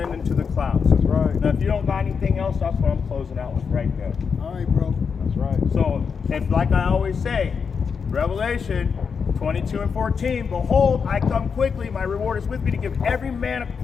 into the clouds. That's right. Now, if you don't got anything else, that's what I'm closing out with right there. All right, bro. That's right. So, if like I always say, Revelation 22 and 14, behold, I come quickly, my reward is with me to give every man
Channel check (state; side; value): quieter; right; 6.0 dB